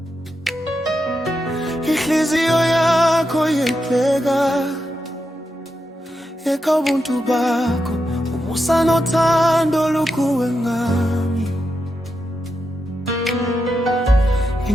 Inhliziyo yakho yehleka, yeka ubuntu bakho, umusa nothando lukuwe ngami.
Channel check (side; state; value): both; normal; correlation 0.86